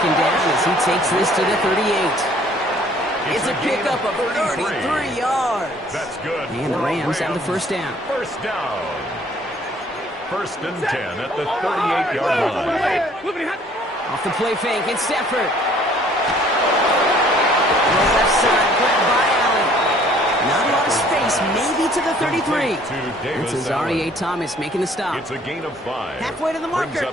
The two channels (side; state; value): both; normal; correlation 0.58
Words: down as he takes this to the 38. It's a pickup of 33 yards. That's good. And the Rams have the first down. First down. 1st and 10 at the 38-yard line. Off the play fake, it's Stafford. Left side, grabbed by Allen. Not a lot of space, maybe to the 33. It's Azareye'h Thomas making the stop. It's a gain of 5. Halfway to the marker,